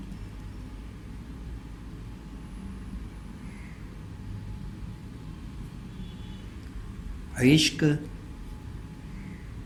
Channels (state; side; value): identical; both; correlation 1.00